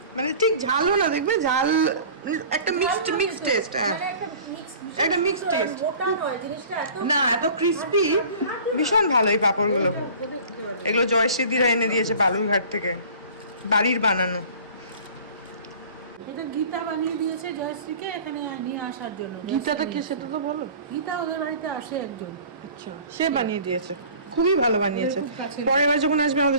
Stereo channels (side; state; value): both; inverted; correlation -0.45